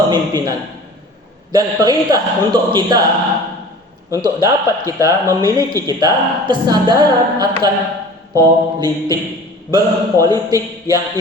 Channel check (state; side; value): normal; both; correlation 0.42